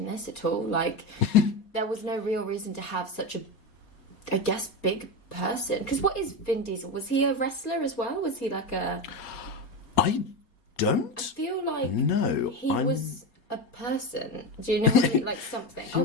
this at all. Like, there was no real reason to have such a, I guess, big person. Because what is Vin Diesel? Was he a wrestler as well? Was he like a? I don't. I feel like he was a person. Do you know what I mean? Like something. He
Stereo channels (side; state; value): right; late; 4.3 ms